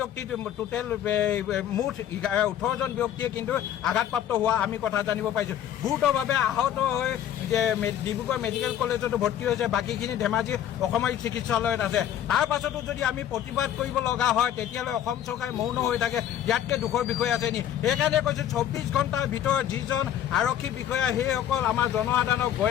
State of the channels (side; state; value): right; quieter; 10.7 dB